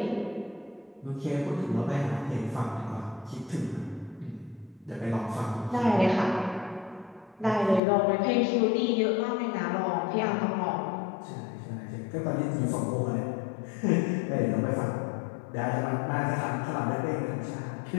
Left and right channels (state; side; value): drops out; right; at 7.8 s